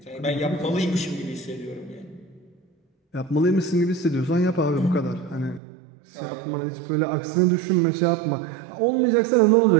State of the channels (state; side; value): drops out; left; at 5.6 s